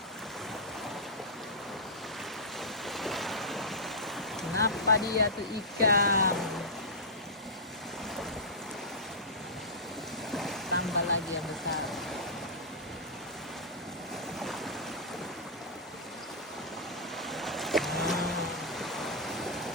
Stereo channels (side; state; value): both; normal; correlation -0.13